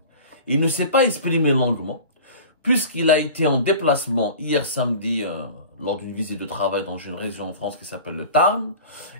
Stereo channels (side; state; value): both; inverted; correlation -0.39